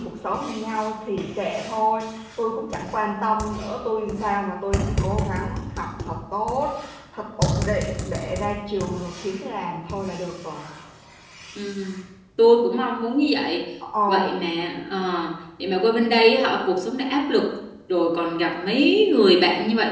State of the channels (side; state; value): both; identical; correlation 1.00